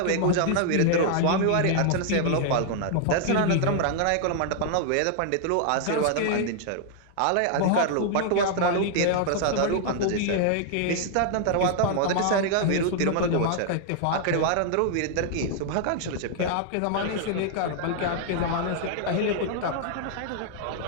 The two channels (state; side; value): different; both; correlation 0.00